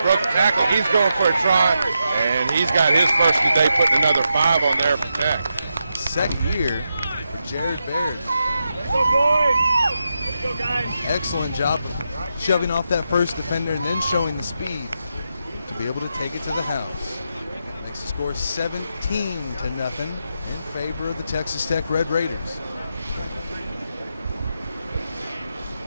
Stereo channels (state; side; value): inverted; both; correlation -0.86